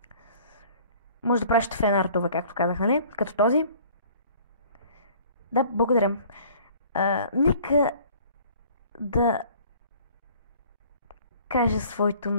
Може да пращате фенартове, както казах, нали? Като този. Да, благодаря. Нека да кажа своето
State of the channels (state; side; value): inverted; both; correlation -0.52